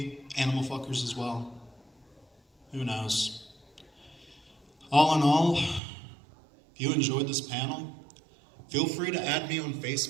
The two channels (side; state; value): left; drops out; at 5.8 s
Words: animal fuckers as well. Who knows? All in all, if you enjoyed this panel, feel free to add me on